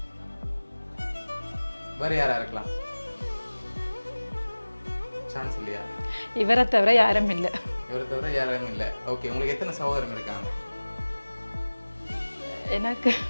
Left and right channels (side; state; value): both; inverted; correlation -1.00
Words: வேறு யாராக இருக்கலாம்? சான்ஸ் இல்லையா? இவரை தவிர யாரும் இல்லை. இவரை தவிர யாரும் இல்லை. ஓகே, உங்களுக்கு எத்தனை சகோதரங்க இருக்காங்க? எனக்கு